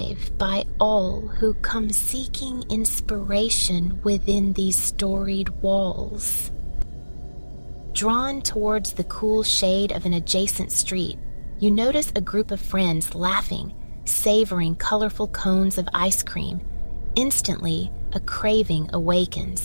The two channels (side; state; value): both; inverted; correlation -1.00